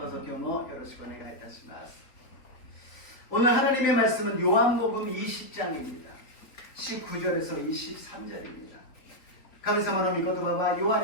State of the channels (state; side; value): late; right; 3.6 ms